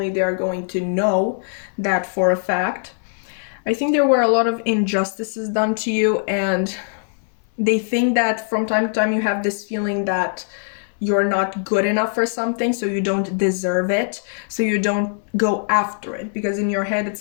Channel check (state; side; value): silent; right; 64 dB below the other